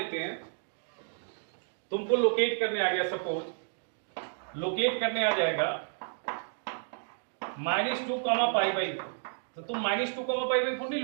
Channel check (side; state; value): left; silent; digital silence